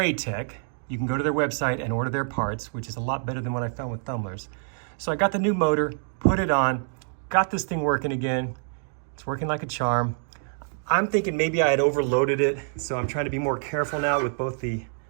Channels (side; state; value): left; silent; 61 dB below the other